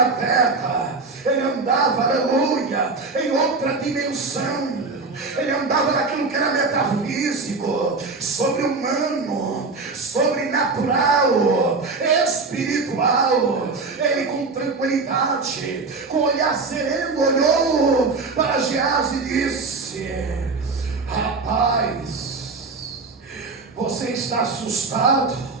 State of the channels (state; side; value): quieter; left; 4.0 dB